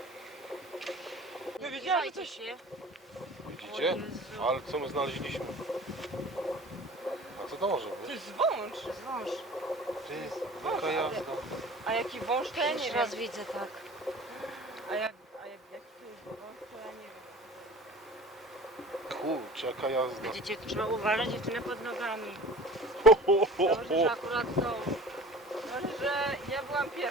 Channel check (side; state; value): both; normal; correlation 0.40